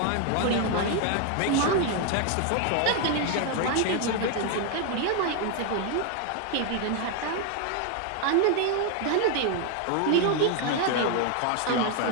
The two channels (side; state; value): both; different; correlation 0.01